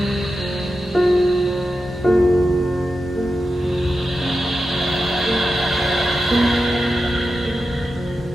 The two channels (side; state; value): both; normal; correlation 0.90